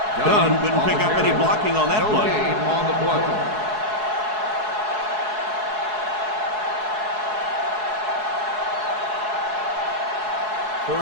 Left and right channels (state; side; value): late; left; 4.7 ms